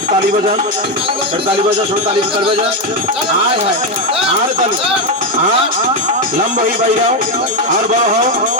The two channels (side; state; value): both; normal; correlation 0.07